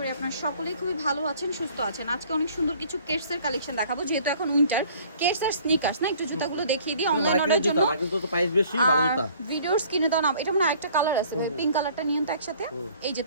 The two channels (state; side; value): inverted; both; correlation -0.54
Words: আপনারা সকলেই খুবই ভালো আছেন, সুস্থ আছেন। আজকে অনেক সুন্দর কিছু কেটসের কালেকশন দেখাবো, যেহেতু এখন উইন্টার। কেটস আর স্নিকার্স না, একটু জুতাগুলো দেখিয়ে দিই অনলাইন অর্ডার জন্য। ভিডিওর স্ক্রিনে দাও না, এটা মানে একটা কালার আছে ভাই, পিঙ্ক কালারটা নিয়ন তো একসাথে। এই যে